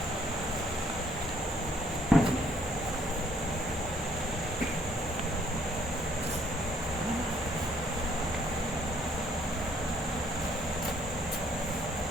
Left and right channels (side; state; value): both; normal; correlation 0.65